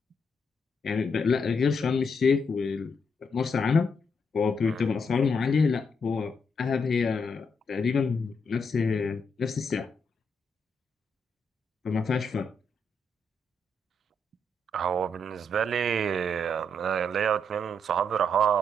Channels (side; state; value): both; normal; correlation 0.78